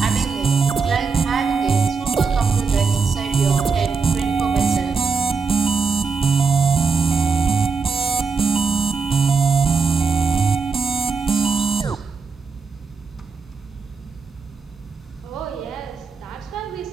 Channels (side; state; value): left; quieter; 4.9 dB